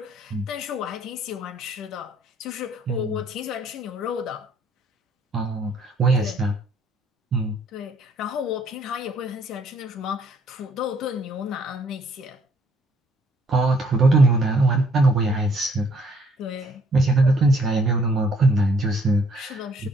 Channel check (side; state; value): both; normal; correlation 0.64